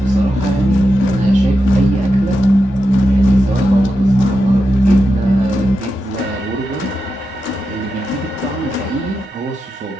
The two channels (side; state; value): both; normal; correlation 0.88